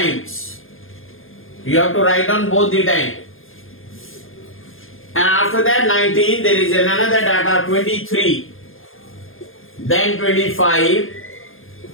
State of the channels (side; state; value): right; late; 0.60 ms